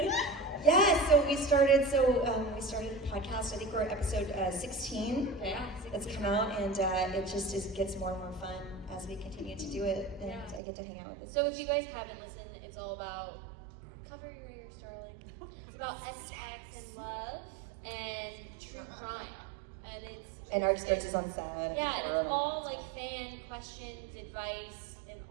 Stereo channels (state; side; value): drops out; left; at 10.6 s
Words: Yeah, so we started a podcast. I think we're at episode 16. Yeah. That's come out, and it gets more and more fun as we continue to do it, and Yeah. I get to hang out with this. So if you guys haven't listened, it's all about, cover your ears, darling. It's about sex and love and true crime. And our experiences on set. yeah, and it's all like fan questions, advice, and